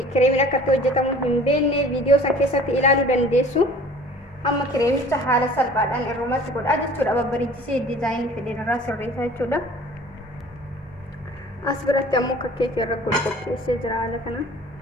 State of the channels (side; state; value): both; normal; correlation 0.47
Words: kireemiin akkatti hojjetamu hin beekne viidiyoo san keessatti ilaaluu dandeessu. Amma kireemicha haala salphaadhaan irrumatti godhaa jechuudha. Babbareechisee diizaayinii fedhan irraa sirreessaa jechuudha. As biratti ammoo akka keekii irra qopheessee jira haala kana.